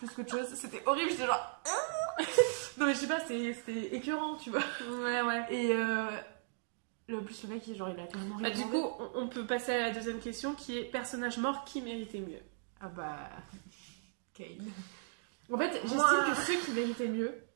qu'autre chose. C'était horrible, j'étais genre... Non, mais je sais pas, c'était écœurant, tu vois. Ouais. Et... En plus, le mec, genre, il a carrément rien Bah, du demandé. coup, on peut passer à la deuxième question qui est personnage mort qui méritait mieux. Ah bah... Kane. En fait, j'estime Moi- que ceux qui méritaient mieux,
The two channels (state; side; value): silent; left; digital silence